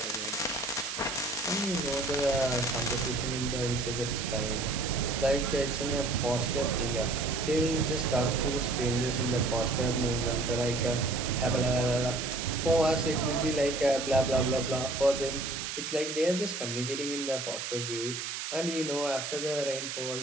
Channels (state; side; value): noise; right; hiss, 5 dB below the sound